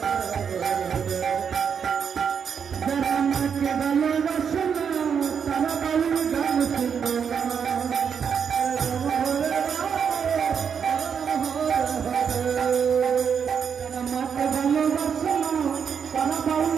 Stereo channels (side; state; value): left; quieter; 7.0 dB